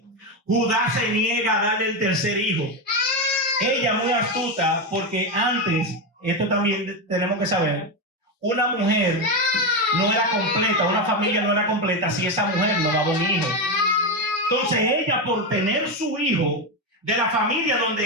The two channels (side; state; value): both; normal; correlation 0.11